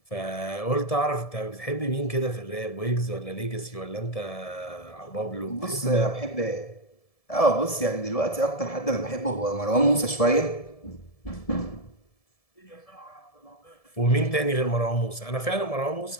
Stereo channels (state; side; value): late; right; 1.7 ms